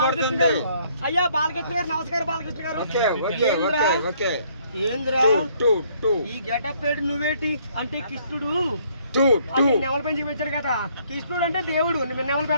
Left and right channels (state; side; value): inverted; both; correlation -0.65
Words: గారు. అయ్యా బాలకృష్ణ గారు నమస్కారం. బాలకృష్ణ గారు ఏంద్రా ఈ గెటప్ పేరు నువ్వేటి? అంటే కృష్ణుడు నెమల పెంచి పెంచాడు కదా, కృష్ణుడు అంటే దేవుడు నెమలు